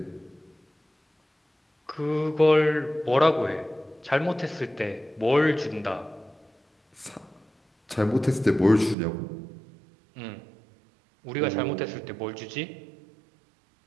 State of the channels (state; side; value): drops out; left; at 9.0 s